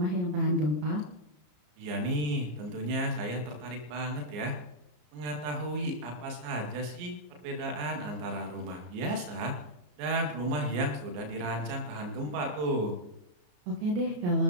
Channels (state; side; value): late; left; 34 ms